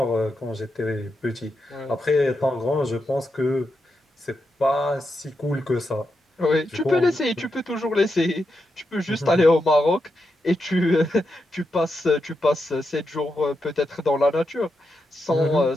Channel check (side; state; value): both; normal; correlation 0.86